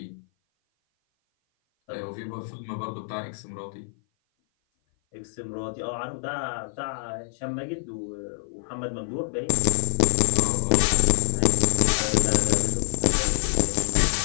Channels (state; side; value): silent; right; 56 dB below the other